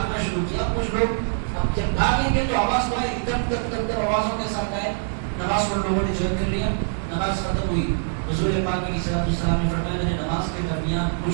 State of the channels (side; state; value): left; silent; digital silence